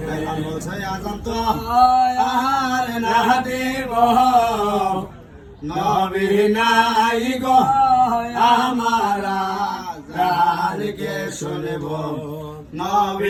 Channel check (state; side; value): identical; both; correlation 1.00